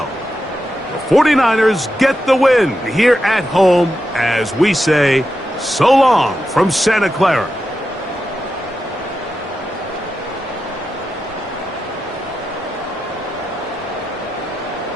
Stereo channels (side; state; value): both; normal; correlation 0.88